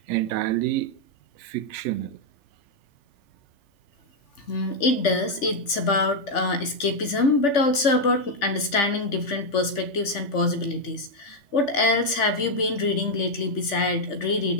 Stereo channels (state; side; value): late; right; 3.4 ms